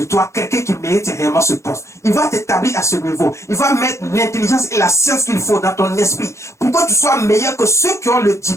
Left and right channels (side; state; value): right; late; 0.14 ms